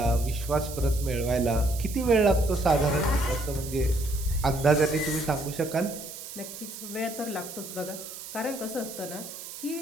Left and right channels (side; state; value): right; noise; hiss, 11 dB below the sound